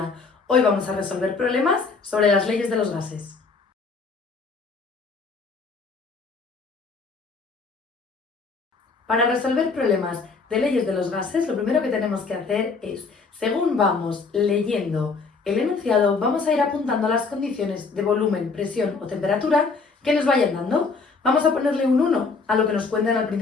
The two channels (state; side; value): quieter; right; 4.5 dB